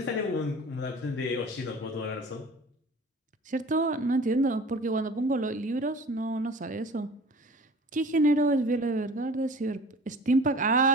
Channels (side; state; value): both; normal; correlation 0.44